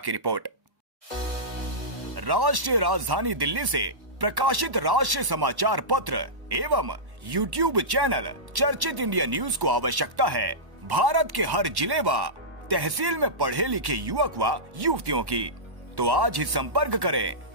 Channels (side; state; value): left; late; 1.1 ms